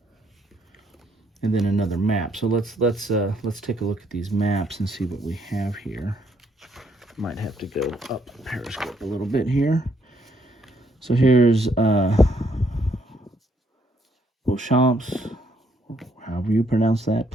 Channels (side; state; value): both; normal; correlation 0.70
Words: And then another map. So let's take a look at these maps and see what we have here. Might have to go up Periscope a little bit here. So here's Vauchamps, however you pronounce that,